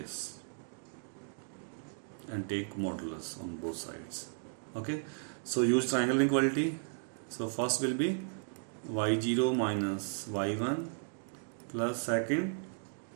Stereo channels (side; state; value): left; silent; digital silence